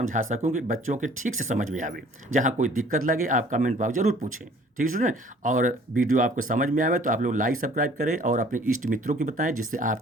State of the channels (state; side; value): normal; both; correlation 0.54